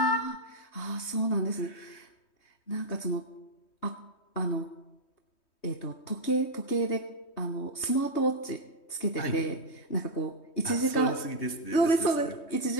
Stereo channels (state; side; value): late; right; 3.2 ms